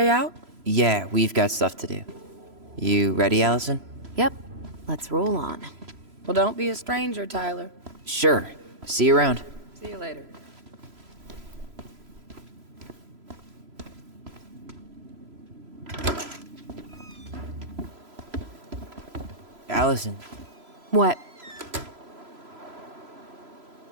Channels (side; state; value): left; late; 3.0 ms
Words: out? Yeah, we've got stuff to do. You ready, Allison? Yep. Let's roll on. Well, don't be a stranger, Tyler. Sure. See you around. See you later. Allison, What?